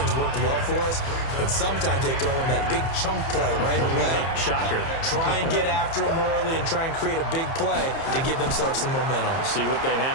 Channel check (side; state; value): right; late; 30 ms